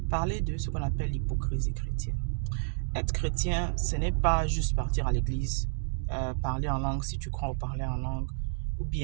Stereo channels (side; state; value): left; silent; digital silence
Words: Parler de ce qu'on appelle l'hypocrisie chrétienne. Être chrétien, ce n'est pas juste partir à l'église, parler en langue si tu crois ou parler en langue, ou